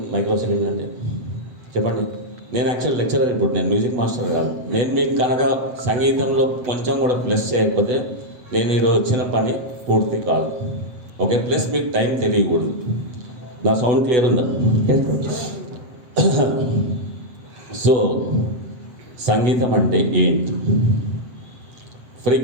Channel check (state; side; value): late; left; 8.1 ms